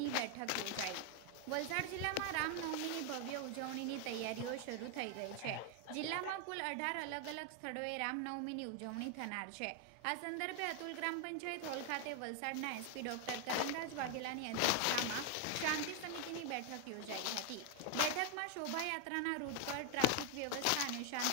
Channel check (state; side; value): different; both; correlation 0.01